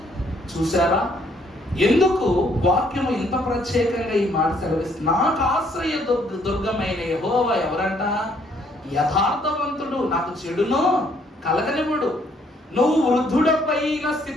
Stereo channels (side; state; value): both; normal; correlation 0.67